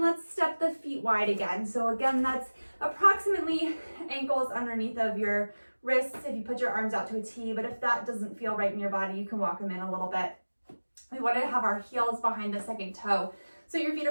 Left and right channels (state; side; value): inverted; both; correlation -1.00